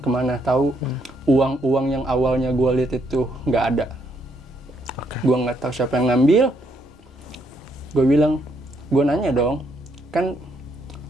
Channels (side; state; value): both; normal; correlation 0.73